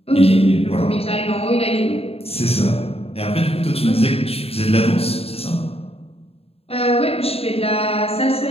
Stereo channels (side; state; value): right; late; 0.29 ms